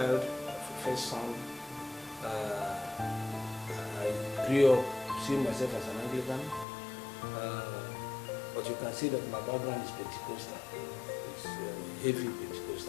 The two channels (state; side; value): drops out; right; at 6.7 s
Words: a first son, I grew up seeing myself as an Anglican. But you can see that my background is Pentecostal. It's heavy